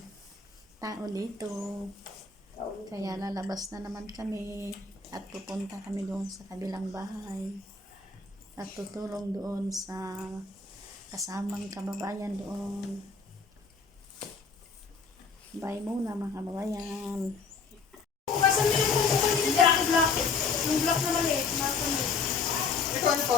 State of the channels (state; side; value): quieter; right; 4.9 dB